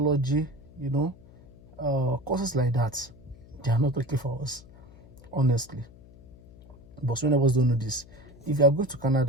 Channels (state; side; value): noise; left; hum, 22 dB below the sound